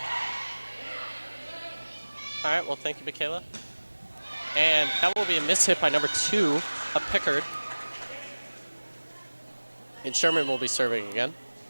All right, well, thank you, Michaela. And that will be a miss hit by number 2 of Pickard. And Sherman will be serving again.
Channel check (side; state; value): both; inverted; correlation -1.00